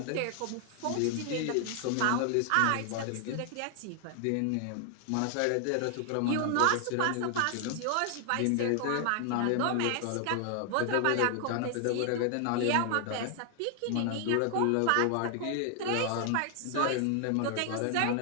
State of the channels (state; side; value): different; both; correlation 0.00